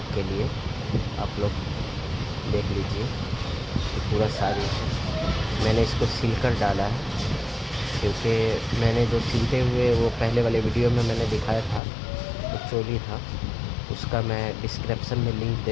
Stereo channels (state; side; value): drops out; right; at 11.8 s